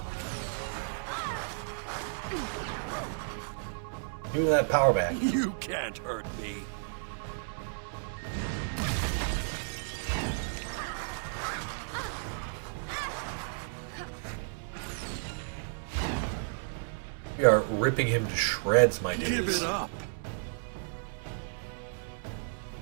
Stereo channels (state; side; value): silent; left; 56 dB below the other